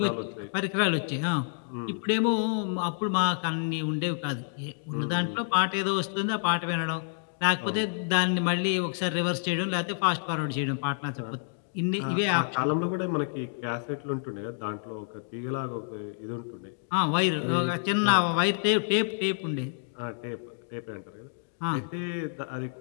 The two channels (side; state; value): right; silent; digital silence